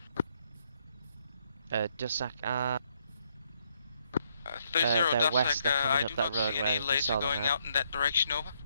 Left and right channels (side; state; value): both; inverted; correlation -0.73